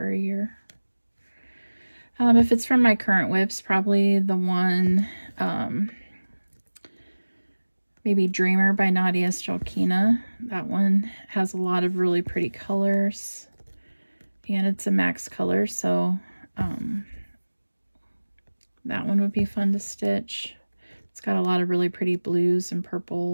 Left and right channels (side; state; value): both; inverted; correlation -1.00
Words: a year. If it's from my current whips, probably the one, maybe Dreamer by Nadia Strelkina. That one has a lot of really pretty colors. And it's a max color, so that one would be fun to stitch. It's got a lot of really pretty blues and